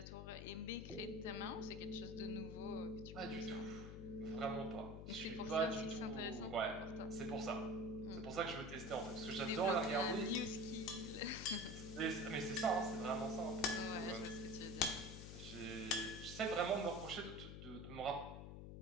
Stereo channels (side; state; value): left; noise; hum, 9 dB below the sound